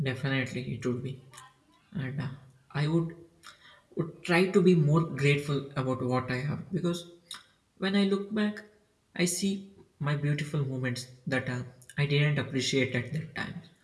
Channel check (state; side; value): identical; both; correlation 1.00